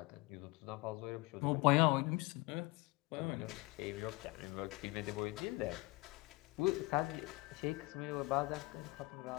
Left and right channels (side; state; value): right; quieter; 23.1 dB